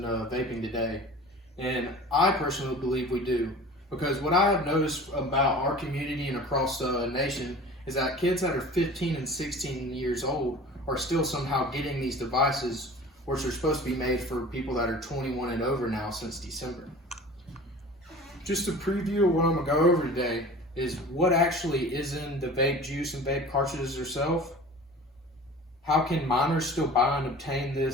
vaping today? And I personally believe we do. Because what I have noticed about our community and across the nation is that kids that are 15 and 16 years old are still somehow getting these devices, which are supposed to be made for people that are 21 and over now since December. Just a preview of what I'm going to go over today is what actually is in the vape juice and vape cartridges themselves. How can minors still buy and obtain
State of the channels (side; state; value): both; normal; correlation 0.41